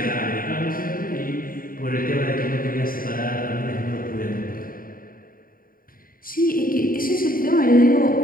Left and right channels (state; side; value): late; right; 0.41 ms